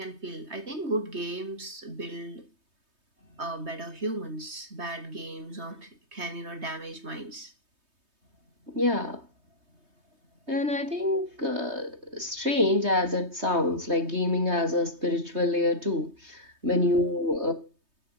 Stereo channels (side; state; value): left; late; 3.2 ms